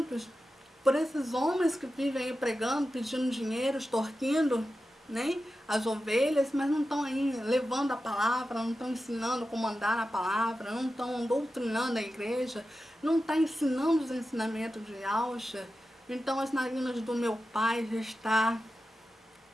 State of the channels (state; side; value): normal; both; correlation 0.92